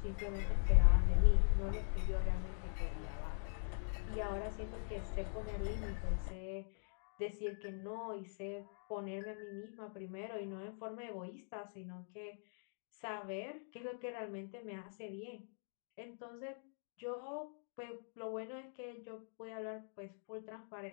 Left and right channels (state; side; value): silent; right; digital silence